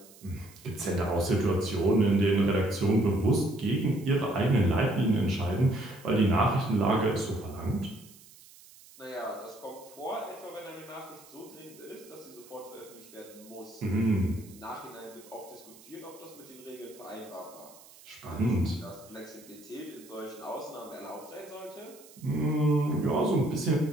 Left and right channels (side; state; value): right; noise; hiss, 22 dB below the sound